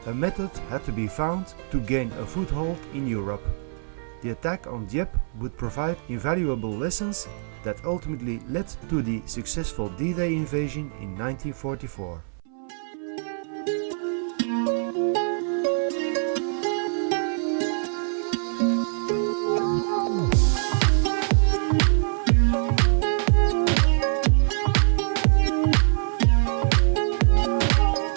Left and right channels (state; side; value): silent; left; 61 dB below the other